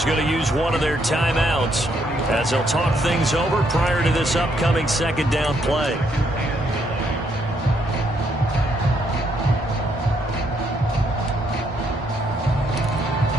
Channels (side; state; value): both; normal; correlation 0.73